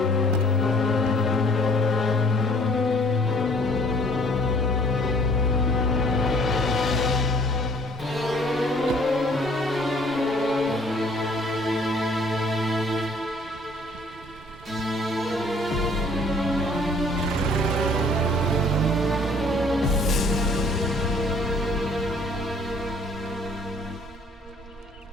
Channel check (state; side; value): normal; both; correlation 0.57